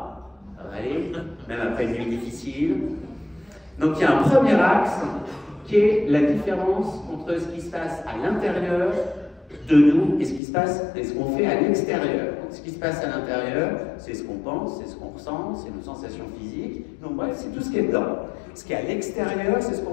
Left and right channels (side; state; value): right; drops out; at 10.4 s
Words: Ça va aller, même après une nuit difficile. Donc il y a un premier axe qui est la différence entre ce qui se passe à l'intérieur de nous et ce qui se passe et ce qu'on fait à l'extérieur. Ce qui se passe à l'intérieur, c'est ce qu'on pense, c'est ce qu'on ressent, c'est nos sensations physiques. Donc bref, c'est tout ce qui est dedans. Ce qui est à l'extérieur, c'est ce